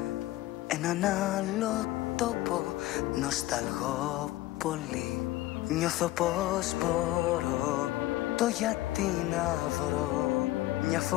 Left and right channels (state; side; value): quieter; right; 16.5 dB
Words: έναν άλλο τόπο, νοσταλγώ πολύ. Νιώθω πως μπορώ το γιατί να βρω. Μια